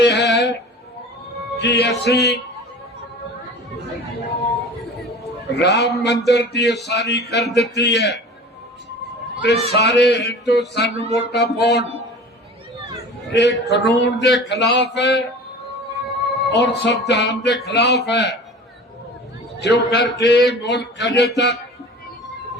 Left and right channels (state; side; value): normal; both; correlation 0.39